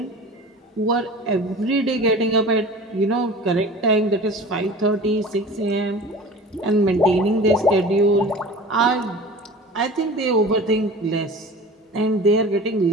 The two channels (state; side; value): normal; both; correlation 0.38